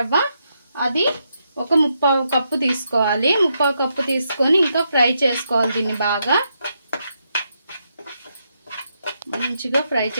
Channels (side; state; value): both; inverted; correlation -0.81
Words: అది ఒక 3/4 కప్పు తీసుకోవాలి. 3/4 కప్పు తీసుకొని ఇంకా ఫ్రై చేసుకోవాలి. దీన్ని బాగా మంచిగా ఫ్రై